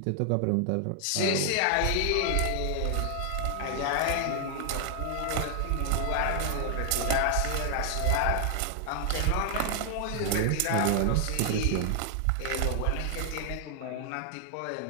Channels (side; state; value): both; different; correlation 0.00